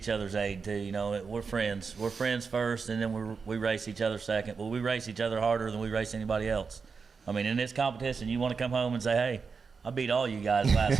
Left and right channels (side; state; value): left; quieter; 5.2 dB